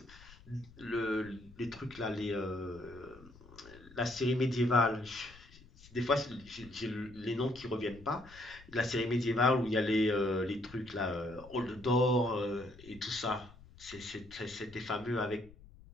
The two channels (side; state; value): left; noise; rumble, 21 dB below the sound